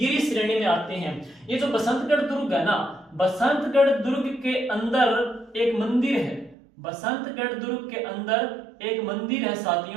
श्रेणी में आते हैं। ये जो बसंतगढ़ दुर्ग है ना, बसंतगढ़ दुर्ग के अंदर एक मंदिर है। बसंतगढ़ दुर्ग के अंदर एक मंदिर है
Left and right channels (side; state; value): left; drops out; at 6.6 s